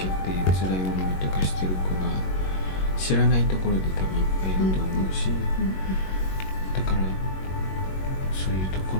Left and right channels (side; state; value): right; late; 21 ms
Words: けて辛い思いとかしてる子が知らないところで多分いっぱいいると思うし、だからそういうとこ